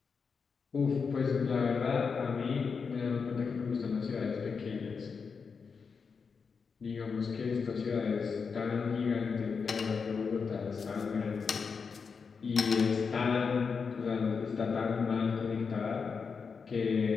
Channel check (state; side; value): quieter; right; 5.5 dB